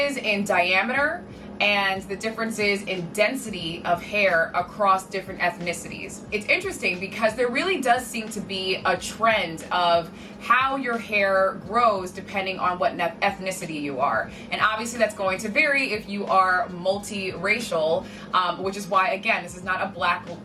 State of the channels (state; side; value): identical; both; correlation 1.00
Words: in diameter and the differences in density of hair across different ethnicities. It's interesting because there really does seem to be a trend of how your hair grows depending on what ethnicity you are. And obviously that's going to vary if you are multiracial, which is why, again, this is not